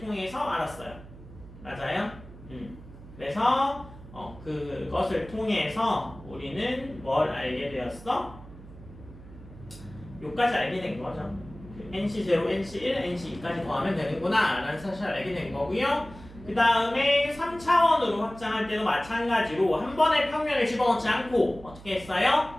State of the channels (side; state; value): right; noise; hum, 18 dB below the sound